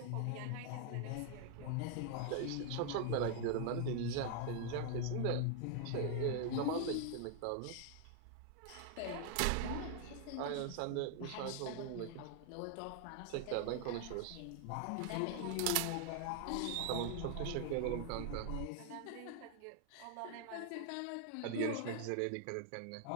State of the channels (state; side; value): different; both; correlation 0.00